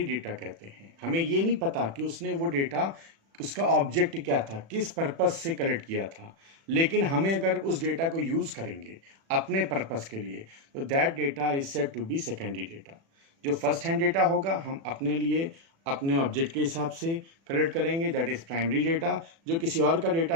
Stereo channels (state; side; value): late; left; 36 ms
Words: डेटा कहते हैं। हमें ये नहीं पता कि उसने वो डेटा, उसका ऑब्जेक्ट क्या था, किस पर्पस से कलेक्ट किया था, लेकिन हमें अगर उस डेटा को यूज करेंगे अपने पर्पस के लिए, तो that data is said to be secondary data. जो फर्स्ट हैंड डेटा होगा हम अपने लिए अपने ऑब्जेक्ट के हिसाब से कलेक्ट करेंगे, दैट इज प्राइमरी डेटा। जो किसी और का